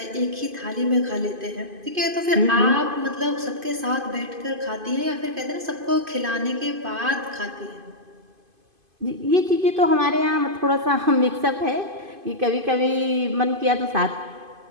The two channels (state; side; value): late; left; 2.5 ms